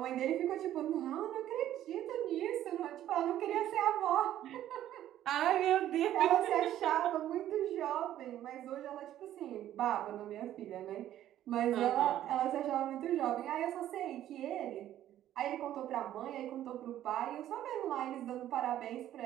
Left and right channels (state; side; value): quieter; left; 12.3 dB